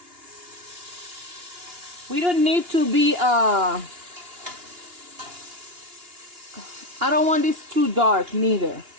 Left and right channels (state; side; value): late; left; 2.8 ms